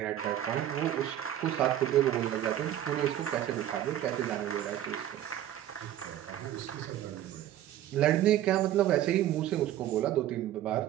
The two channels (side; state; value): left; quieter; 12.2 dB